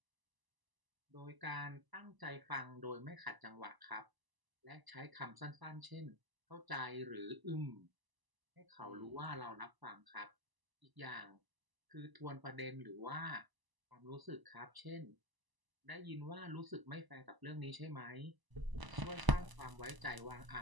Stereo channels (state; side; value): late; left; 1.0 ms